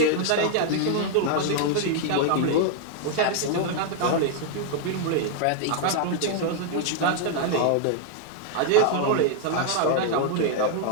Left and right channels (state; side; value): different; both; correlation 0.00